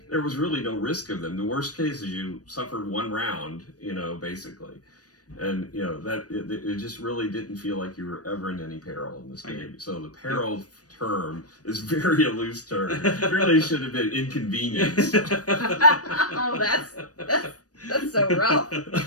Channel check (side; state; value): right; late; 0.68 ms